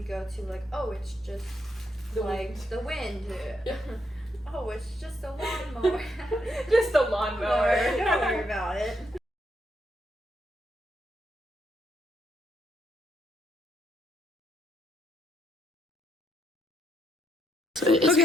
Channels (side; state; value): both; normal; correlation 0.77